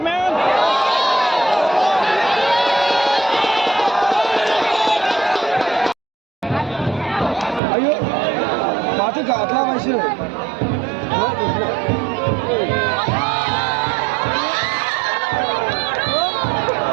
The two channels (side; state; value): left; drops out; at 7.6 s